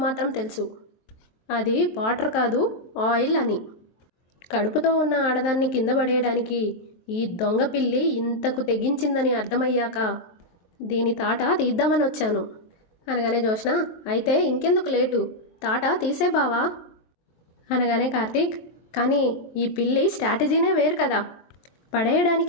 మాత్రం తెలుసు అది వాటర్ కాదు ఆయిల్ అని. కడుపుతో ఉన్న ఆడదాన్ని కింద పడేయడానికి ఈ దొంగ పిల్లి ఇంతకు తెగించిందని అర్థమయ్యాక దీని తాట తీద్దామని వచ్చాను అనగానే జోష్న, అయితే ఇంకెందుకు లేటు, తాట తీసే బావా అనగానే కార్తీక్, కానీ ఈ పిల్లి స్ట్రాటజీనే వేరు కదా,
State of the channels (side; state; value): right; late; 23 ms